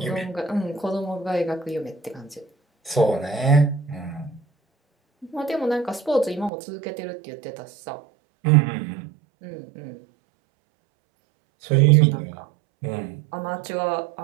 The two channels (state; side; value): drops out; left; at 6.5 s